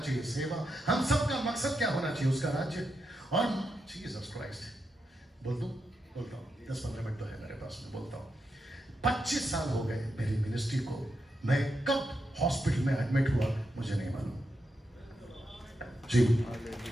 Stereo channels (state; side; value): normal; both; correlation 0.85